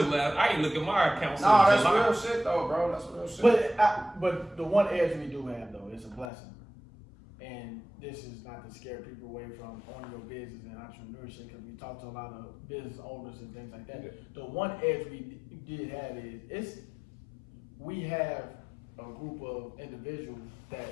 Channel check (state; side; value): drops out; right; at 6.2 s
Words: the last, I ain't look at my account since Nah, that's July. real shit though, bro. That's real shit. But the one edge we do have though is a blessing, and this is not to scare people away from owning your business and entrepreneurship, because we talk to a lot of business owners and things like that. Yeah. The one edge we did have is we have a group of individuals that